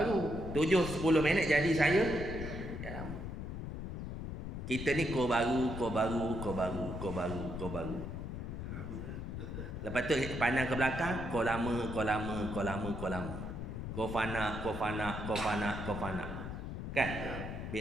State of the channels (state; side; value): noise; left; rumble, 6 dB below the sound